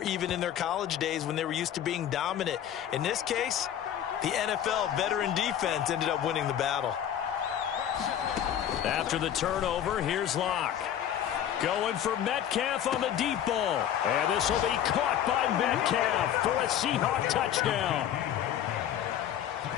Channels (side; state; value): right; quieter; 10.3 dB